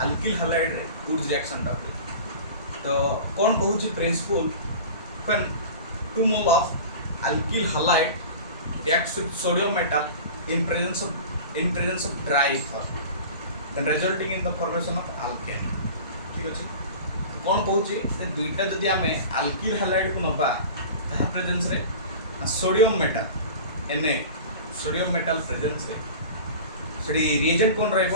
अल्किल हैलाइड रे वुड्स रिएक्शन टा तो कौन कहूची principle when 2 mole of alkyl halide reacts with sodium metal in presence of dry ether then resulting in the formation of alkane ठीक अछि। कौन कहूची से दुईटा जदि आमे अल्किल हैलाइड को नबा ता प्रेजेंस रे sodium metal Na sodium metal presence रे सेडी रिएजेंट कौन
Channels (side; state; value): both; inverted; correlation -0.36